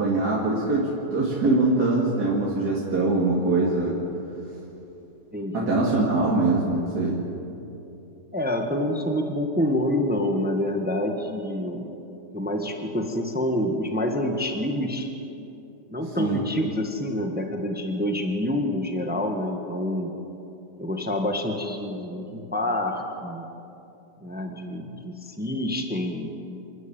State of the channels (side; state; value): both; normal; correlation 0.15